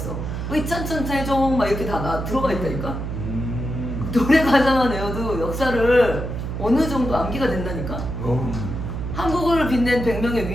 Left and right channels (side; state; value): right; noise; hum, 5 dB below the sound